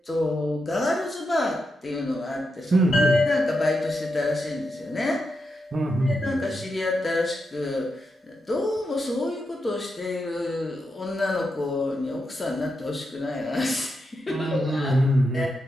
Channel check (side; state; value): both; normal; correlation 0.86